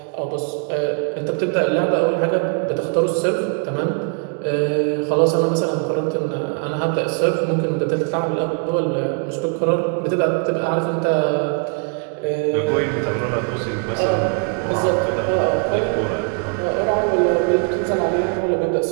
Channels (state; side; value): quieter; left; 38.9 dB